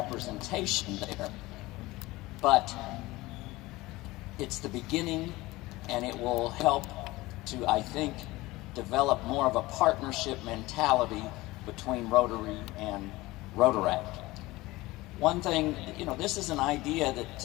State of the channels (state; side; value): quieter; right; 19.8 dB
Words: there, but it's the beginning, and it will help to, I think, develop more of a partnership mentality between Rotary and Rotaract. One thing, this is an idea